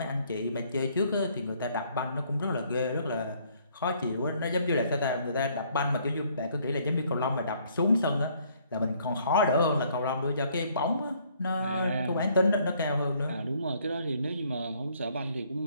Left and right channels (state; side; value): inverted; both; correlation -0.64